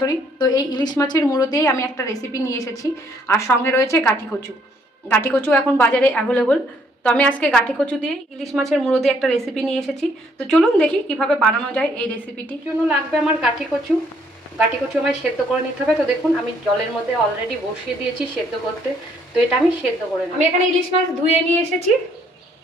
তো এই ইলিশ মাছের মুড়ো দিয়েই আমি একটা রেসিপি নিয়ে এসেছি। আর সঙ্গে রয়েছে গাঠি কচু। গাঠি কচু এখন বাজারে অ্যাভেলেবল, তো আমি আজকে গাঠি কচু দিয়ে ইলিশ মাছের মুড়ো দিয়ে একটা রেসিপি নিয়ে এসেছি। তো চলুন দেখি কিভাবে বানানো যায় এই রেসিপিটির জন্য লাগবে আমার গাঠি কচু। গাঠি কচু আমায় সেদ্ধ করে নিতে হবে। তো দেখুন আমি জলের মধ্যে অলরেডি বসিয়ে দিয়েছি সেদ্ধ করতে, তো এটা আমি সেদ্ধ করে নেব। আমি এখানে ইলিশ মাছ ধুয়ে নিয়ে এসেছি,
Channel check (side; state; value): both; normal; correlation 0.67